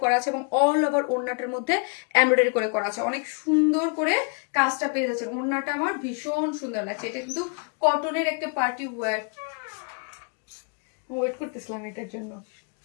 করা আছে এবং অল ওভার ওড়নাটার মধ্যে এমব্রয়ডারি করে করা আছে। অনেক সুন্দর করে কাজটা পেয়ে যাচ্ছে। ওড়নাটা আমার ভীষণ সুন্দর লাগছে। এটা কিন্তু কটনের একটা পার্টি ওয়্যার। ওয়েট করতেছিলাম এটার জন্য।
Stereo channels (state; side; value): quieter; right; 38.2 dB